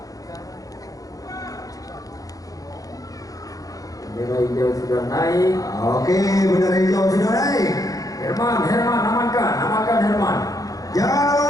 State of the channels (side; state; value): right; late; 0.17 ms